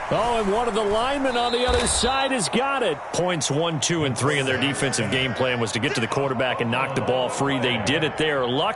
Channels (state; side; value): identical; both; correlation 1.00